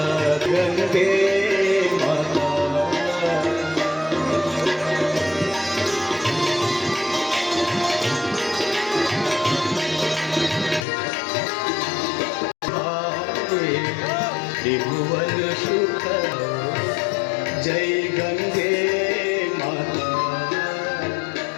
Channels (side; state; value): right; drops out; at 10.9 s